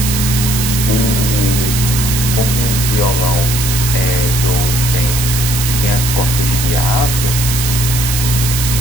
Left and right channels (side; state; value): right; noise; hiss, 3 dB below the sound